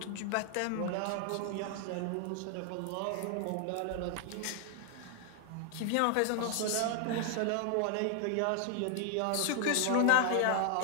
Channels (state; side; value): different; both; correlation 0.00